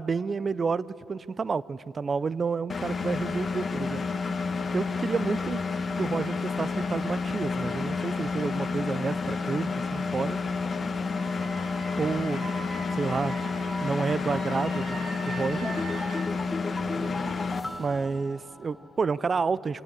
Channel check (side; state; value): both; normal; correlation 0.86